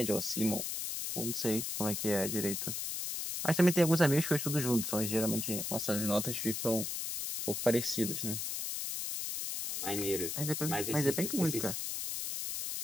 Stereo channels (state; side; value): noise; left; hiss, 3 dB below the sound